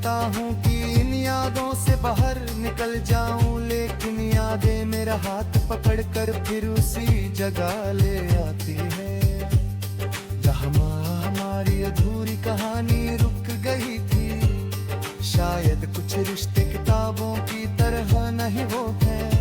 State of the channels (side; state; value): both; identical; correlation 1.00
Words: हूँ कि इन यादों से बाहर निकल जाऊं, लेकिन यादें मेरा हाथ पकड़कर फिर उसी जगह ले आती है जहाँ हमारी अधूरी कहानी रुक गई थी। शायद कुछ रिश्ते किताबों की तरह नहीं वो